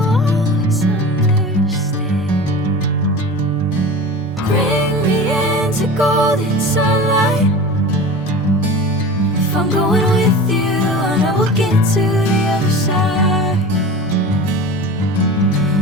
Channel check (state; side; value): normal; both; correlation 0.34